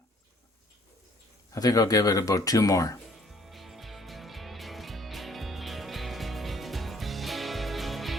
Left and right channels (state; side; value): normal; both; correlation 0.59